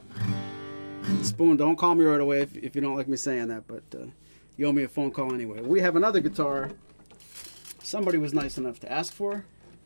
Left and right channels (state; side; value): inverted; both; correlation -1.00